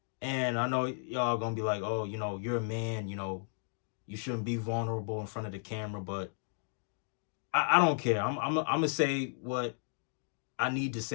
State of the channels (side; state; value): right; silent; digital silence